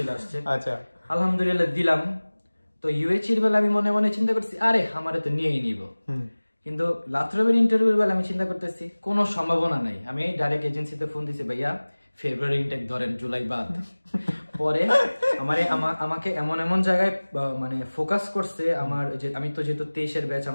আসছে। আচ্ছা, আলহামদুলিল্লাহ দিলাম। তো ইউএইচির বেলা আমি মনে মনে চিন্তা করছি, আরে আমারে তো নিয়েই নিব। কিন্তু লাথ্রবের ইন্টারভিউর বেলা আমি চিন্তা করতেছি কোনো সম্ভাবনা নাই। আমি ডাইরেক্ট এজেন্সিতে ফোন দিছি, ভাইয়া ফেব্রুয়ারি ইনটেক ধরেন, জুলাই বাদ। পরে আমাকে এমন জায়গায় মানে ফোকাস করছে আমার, যে আমি তো যেহেতু 23-এর ব্যাচ,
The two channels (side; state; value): both; inverted; correlation -1.00